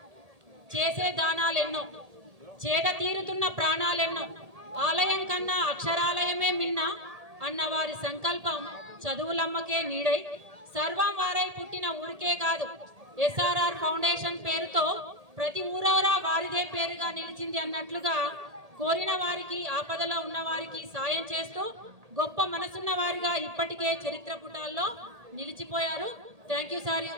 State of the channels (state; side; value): late; left; 1.8 ms